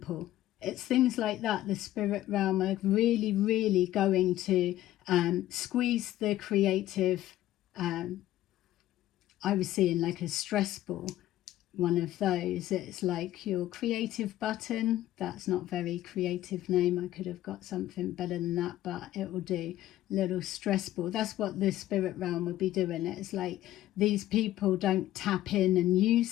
it's things like that. The spirit realm are really, really going to squeeze the creative. I was seeing like a stress ball, one of those. It's like your creative button. That's not very creative name. I could have got something better than that, but it will do. Little stress ball. That's what the spirit realm would be doing. It's like these people don't tap in and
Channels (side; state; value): right; quieter; 14.1 dB